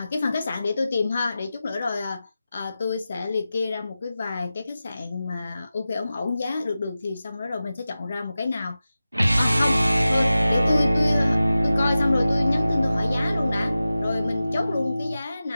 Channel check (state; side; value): inverted; both; correlation -0.94